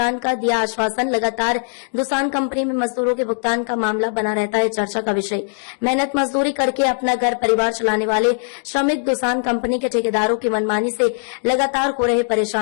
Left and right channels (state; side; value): silent; right; digital silence